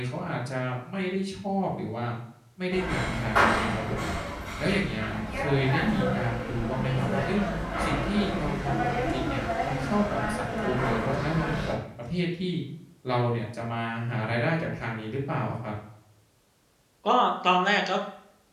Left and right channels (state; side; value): identical; both; correlation 1.00